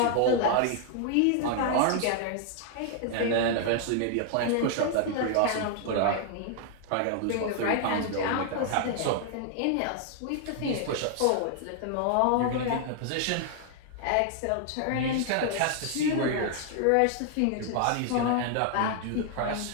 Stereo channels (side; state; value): both; different; correlation 0.00